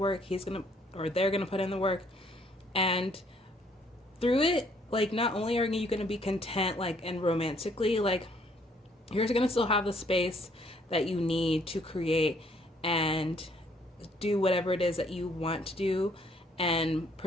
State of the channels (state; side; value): normal; both; correlation 0.65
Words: they're going to put in the work. And through it, like, not only are you going to be content, like, and romantically, like, you're going to still have the space that you need to create and do whatever it is that you want to do and